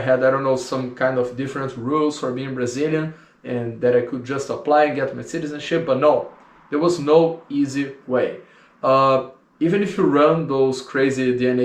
I don't know, some kind of different rules for being Brazilian, and that I could just apply and get my citizenship, but no, there was no easy way. Even if you run those crazy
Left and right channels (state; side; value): identical; both; correlation 1.00